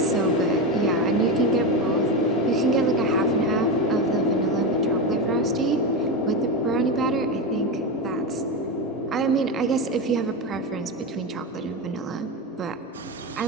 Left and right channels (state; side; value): normal; both; correlation 0.15